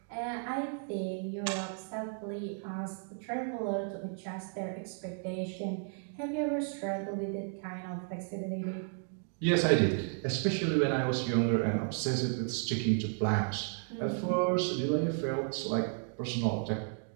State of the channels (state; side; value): silent; left; 55 dB below the other